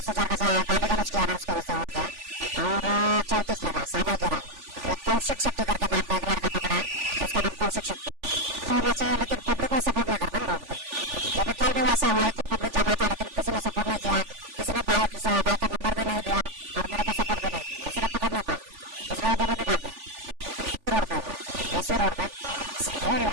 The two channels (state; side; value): late; left; 3.4 ms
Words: का गाली गलौज किया ना, उसके वजह से हो गया। और 34 लगा है, सामयिक इरादा। ये कौशिक शेट्टी करके नाम का एक लड़का पकड़ा है, उसका नाम कौशिक शेट्टी होना चाहिए, लेकिन पब्लिक कोई सपोर्ट नहीं करता ना रोड पे। जब भी कल भी वैसा हुआ, इतनी पब्लिक जमा था लेकिन किसी ने सपोर्ट नहीं किया, किसी ने बाइक का नंबर भी नहीं लिया और मेरे को सपोर्ट भी नहीं किया, इसलिए पकड़ नहीं पाया, इसलिए वो दोनों भी भाग गए थे। रोड पे हुआ है, SV रोड पे, यही